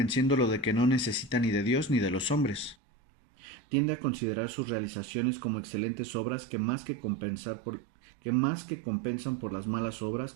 de que no necesita ni de Dios ni de los hombres. Tiende a considerar sus realizaciones como excelentes obras que más que compensan por las malas obras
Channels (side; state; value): left; drops out; at 2.8 s